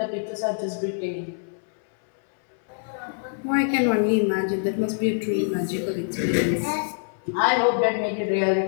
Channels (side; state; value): right; silent; 62 dB below the other